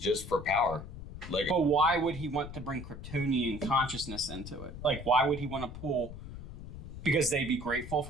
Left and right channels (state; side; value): noise; left; rumble, 11 dB below the sound